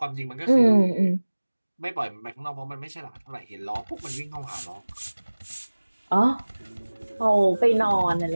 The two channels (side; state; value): both; inverted; correlation -1.00